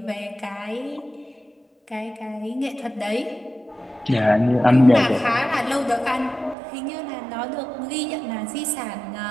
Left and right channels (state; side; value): drops out; left; at 6.6 s